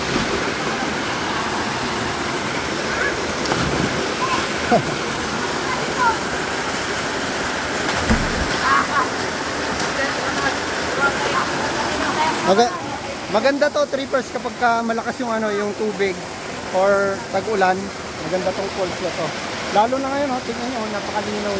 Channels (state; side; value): identical; both; correlation 1.00